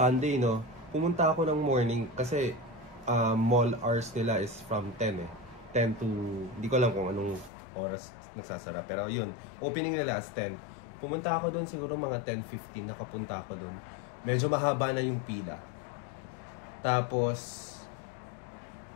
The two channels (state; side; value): drops out; right; at 7.5 s